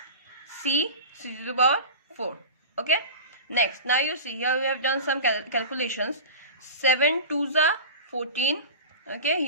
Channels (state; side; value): inverted; both; correlation -0.32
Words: c to the power 4, okay. Next, now you see here we have done some calculations. 7 2s are 14, okay,